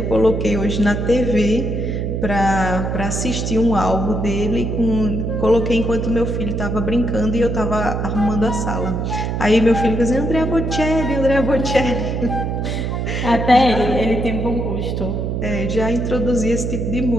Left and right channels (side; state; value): right; noise; hum, 2 dB below the sound